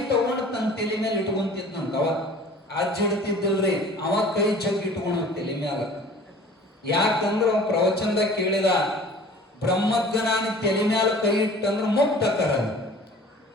ತಗೊಂಡು ತನ್ನ ತಲೆ ಮೇಲೆ ಇಟ್ಕೊಂತಿದ್ನಂತ. ಅವ ಅಜ್ಜ ಇಡ್ತಿದ್ದಿಲ್ರಿ, ಅವ ಕೈ ಜಗ್ ಇಟ್ಕೊಂಡು ತಲೆ ಮ್ಯಾಲ. ಯಾಕಂದ್ರ ಅವ ಪ್ರವಚನದಾಗ ಕೇಳಿದ, ಬ್ರಹ್ಮಜ್ಞಾನಿ ತಲೆ ಮ್ಯಾಲ ಕೈ ಇಟ್ಟಂದ್ರ ಮುಕ್ತಕರ.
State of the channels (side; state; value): both; normal; correlation 0.46